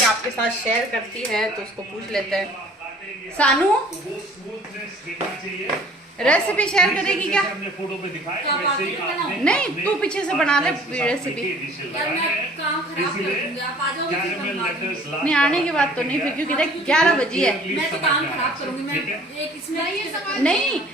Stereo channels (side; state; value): both; normal; correlation 0.51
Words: आपके साथ शेयर करती है तो उसको पूछ लेते हैं। सानू रेसिपी शेयर करेगी क्या? फोटो पे दिखाया नहीं, तू पीछे से बना ले रेसिपी। नहीं, आने की बात तो नहीं फिर, क्योंकि देख 11 बजी है। मैं तो काम खराब करूंगी। मैं एक इसमें नहीं,